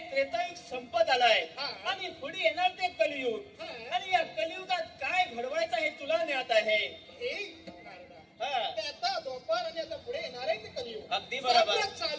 त्रेतायुग संपत आलाय आणि पुढे येणार ते कलियुग. आणि या कलियुगात काय घडवायचं हे तुला ज्ञात आहे. हे नारदा, आता द्वापार आणि आता पुढे येणार आहे ते कलियुग. अगदी बरोबर.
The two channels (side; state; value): both; identical; correlation 1.00